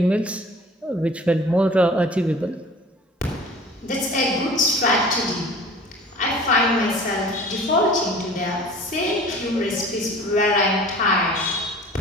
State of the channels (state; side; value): normal; both; correlation 0.45